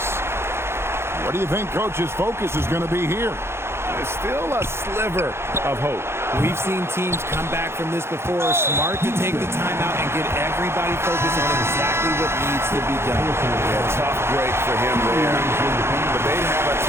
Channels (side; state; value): left; late; 0.12 ms